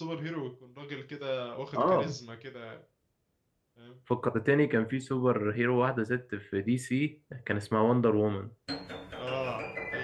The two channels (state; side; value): identical; both; correlation 1.00